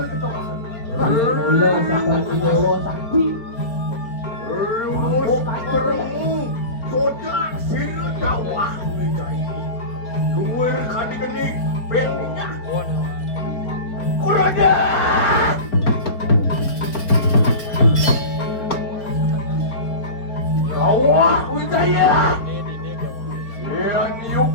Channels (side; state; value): right; late; 4.1 ms